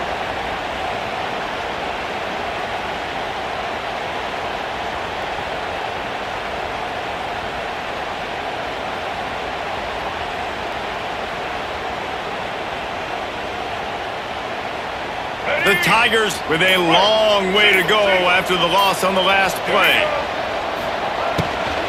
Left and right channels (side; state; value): both; identical; correlation 1.00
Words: The Tigers with a long way to go after the loss on the last play.